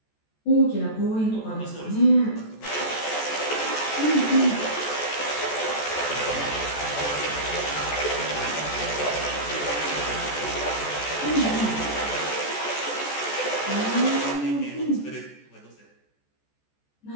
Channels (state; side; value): late; right; 14 ms